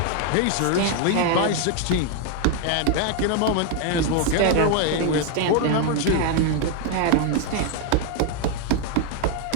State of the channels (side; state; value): both; different; correlation 0.01